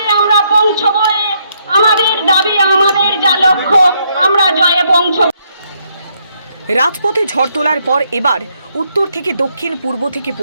আমরা পৌঁছবো। আমাদের দাবি, আমাদের যা লক্ষ্য, আমরা জয়ে পৌঁছব। রাজপথে ঝড় তোলার পর এবার উত্তর থেকে দক্ষিণ, পূর্ব থেকে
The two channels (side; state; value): both; inverted; correlation -0.74